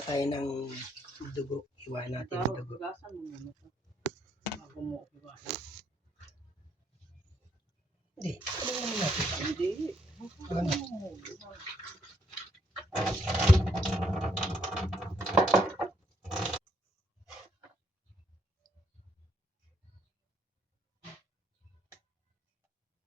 tayo ng dugo. Iwa natin ang dugo. Gasan mo muna ito. Bago mo iwasan. Hindi. Ano naman natin? Hindi. Ano?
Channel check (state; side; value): normal; both; correlation 0.72